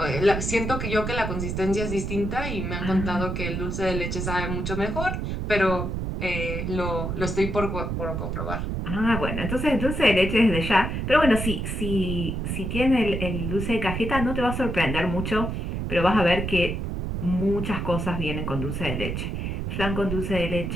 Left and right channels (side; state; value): right; noise; rumble, 3 dB below the sound